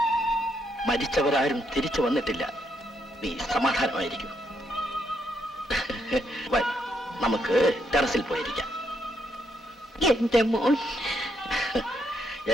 മരിച്ചവരാരും തിരിച്ചു വന്നിട്ടില്ല. നീ സമാധാനമായിരിക്കും. നമുക്ക് ടെറസിൽ പോയിരിക്കാം. എന്റെ മോൻ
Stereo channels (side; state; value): both; normal; correlation 0.77